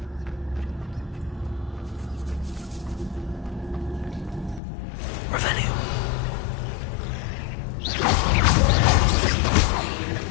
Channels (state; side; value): drops out; right; at 4.6 s